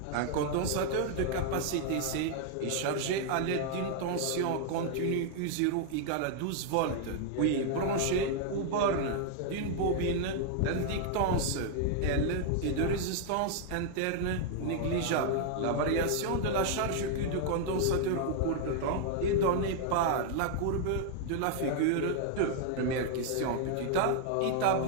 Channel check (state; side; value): different; both; correlation 0.00